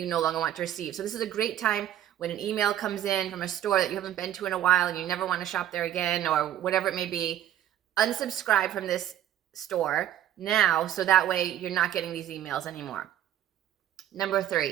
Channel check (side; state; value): left; quieter; 11.7 dB